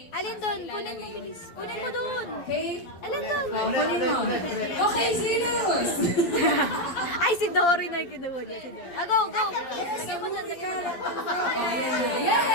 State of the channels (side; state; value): right; late; 11 ms